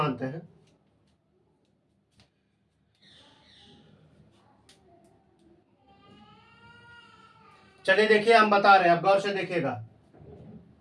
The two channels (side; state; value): both; identical; correlation 1.00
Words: हैं। चलिए देखिए, हम बता रहे हैं, अब गौर से देखिएगा।